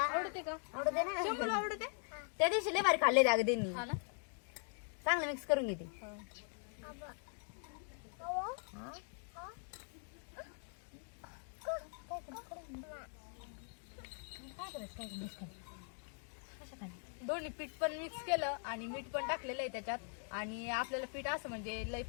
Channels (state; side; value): silent; right; 50 dB below the other